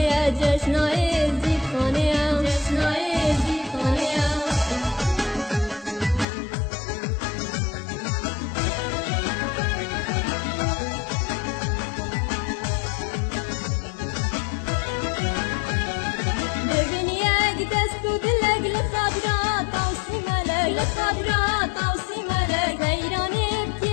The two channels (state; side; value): drops out; right; at 6.2 s